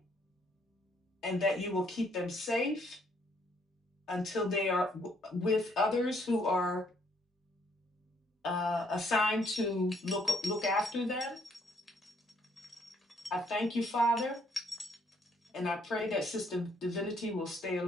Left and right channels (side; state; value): both; normal; correlation 0.68